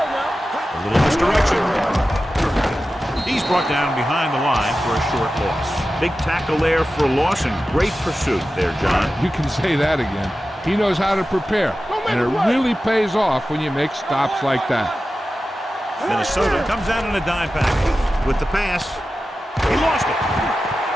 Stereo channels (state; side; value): normal; both; correlation 0.93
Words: now. A little misdirection. He's brought down behind the line for a short loss. Big tackle there for a loss and great pursuit there, John. You can say that again. He knows how to prepare, and it really pays off when you make stops like that. Minnesota comes out in a dime package. With the pass, he lost it.